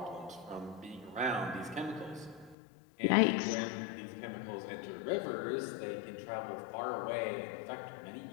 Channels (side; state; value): right; drops out; at 2.6 s